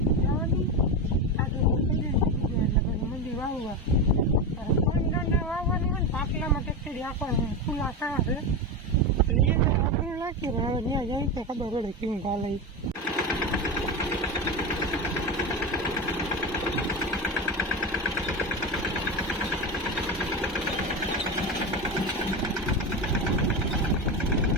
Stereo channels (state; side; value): normal; both; correlation 0.18